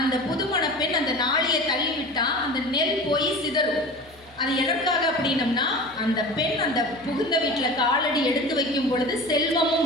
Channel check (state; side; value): normal; both; correlation 0.35